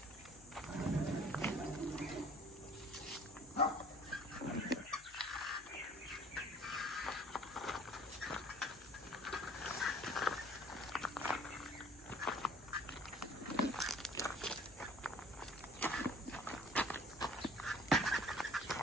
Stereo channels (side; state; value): left; noise; hum, 23 dB below the sound